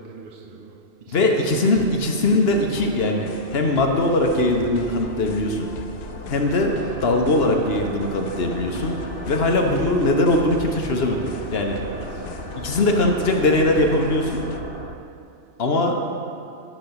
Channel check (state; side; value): late; right; 2.9 ms